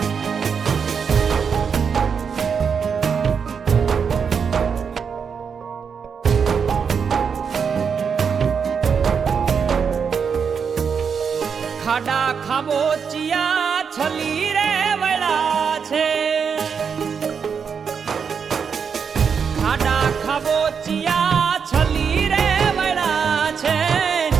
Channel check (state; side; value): quieter; left; 6.5 dB